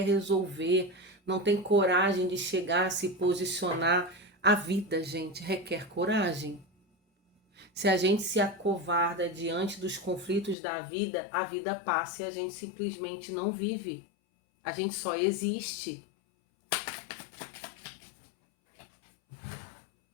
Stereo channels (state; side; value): drops out; right; at 10.6 s